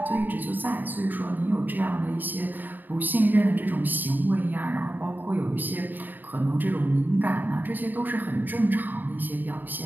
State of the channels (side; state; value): left; late; 0.090 ms